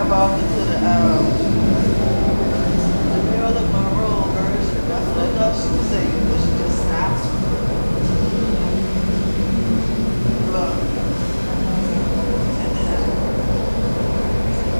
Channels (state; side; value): inverted; both; correlation -1.00